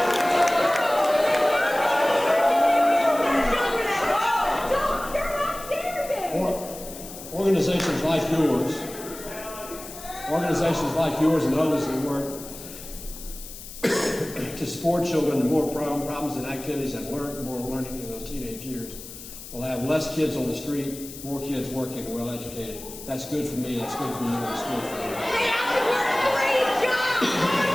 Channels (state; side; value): noise; left; hiss, 14 dB below the sound